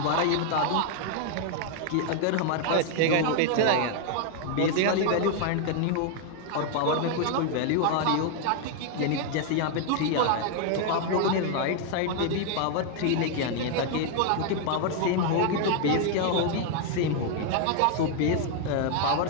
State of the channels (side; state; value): both; different; correlation 0.00